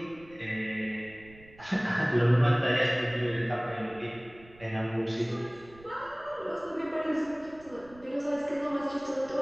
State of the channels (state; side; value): noise; right; rumble, 23 dB below the sound